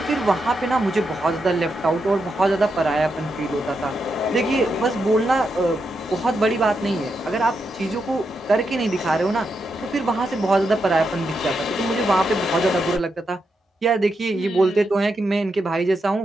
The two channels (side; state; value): both; normal; correlation 0.84